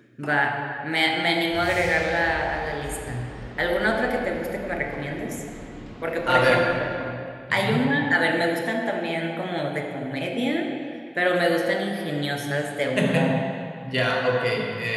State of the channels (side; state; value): both; identical; correlation 1.00